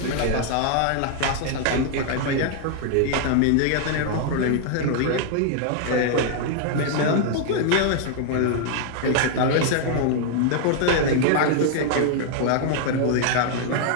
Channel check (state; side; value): different; both; correlation 0.00